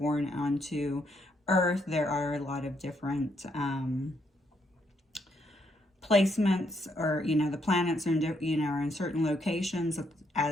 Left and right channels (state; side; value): normal; both; correlation 0.75